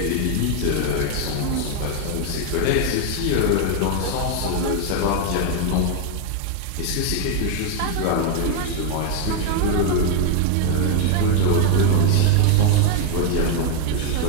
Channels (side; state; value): both; different; correlation 0.00